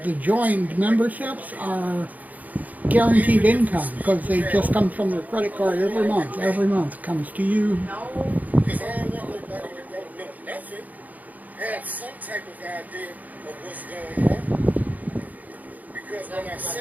the joined memberships are guaranteed income because they just come from their credit card every month. Every month comes to you. Because I don't want nobody that don't know nothing have some type of idea of what's going on. Because when I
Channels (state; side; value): late; left; 0.079 ms